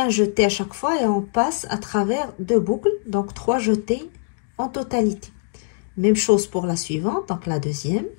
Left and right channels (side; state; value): right; silent; digital silence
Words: jeté à chaque fois et on passe à travers 2 boucles, donc 3 jetés en totalité. Même chose pour la suivante, donc la deuxième.